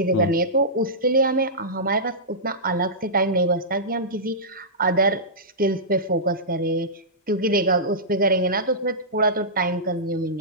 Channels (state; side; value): normal; both; correlation -0.17